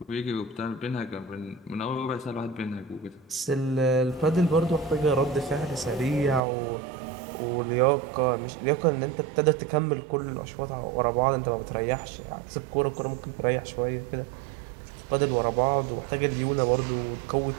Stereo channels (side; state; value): left; drops out; at 6.4 s